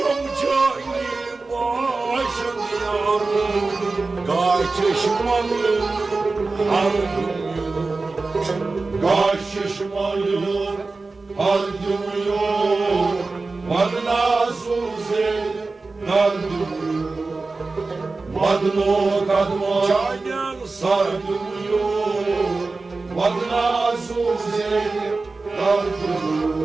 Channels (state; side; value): quieter; left; 3.7 dB